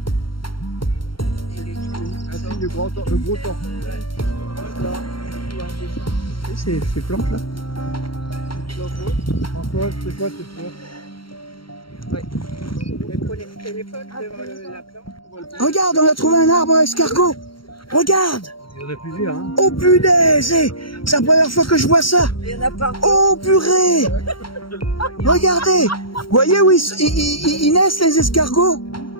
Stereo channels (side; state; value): right; late; 0.73 ms